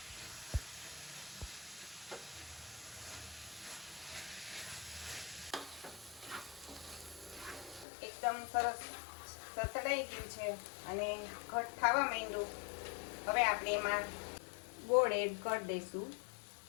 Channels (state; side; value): drops out; right; at 7.9 s